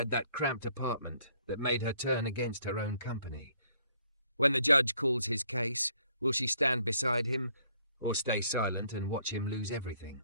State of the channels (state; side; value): inverted; both; correlation -0.66